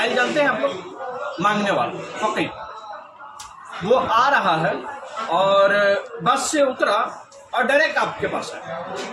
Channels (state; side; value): identical; both; correlation 1.00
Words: जानते हैं आप लोग, मांगने वाला फकीर। वो आ रहा है और बस से उतरा और डायरेक्ट आपके पास आया।